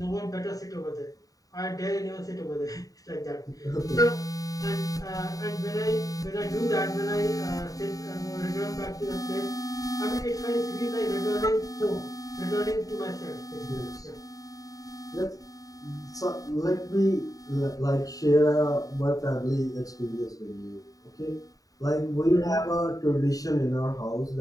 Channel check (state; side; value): late; right; 0.17 ms